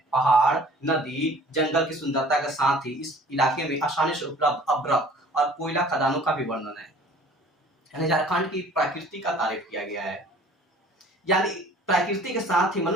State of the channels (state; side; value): normal; both; correlation 0.50